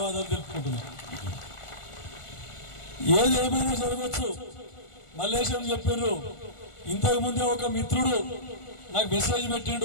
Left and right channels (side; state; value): right; late; 1.4 ms